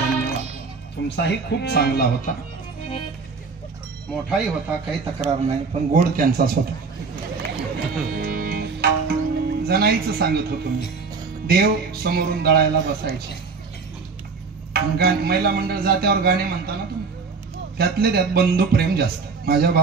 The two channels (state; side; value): quieter; left; 4.8 dB